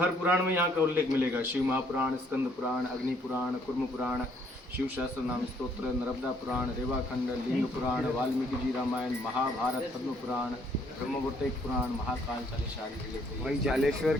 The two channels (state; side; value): normal; both; correlation 0.66